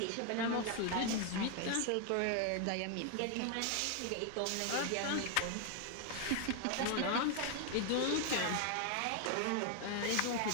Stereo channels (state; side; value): different; both; correlation 0.00